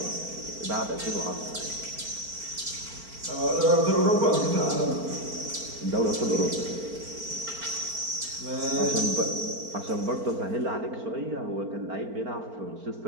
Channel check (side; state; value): left; late; 4.4 ms